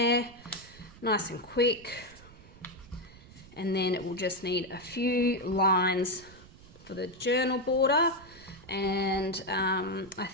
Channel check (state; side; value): noise; right; rumble, 21 dB below the sound